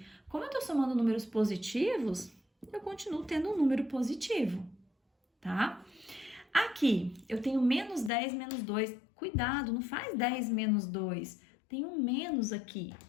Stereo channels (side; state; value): right; drops out; at 8.1 s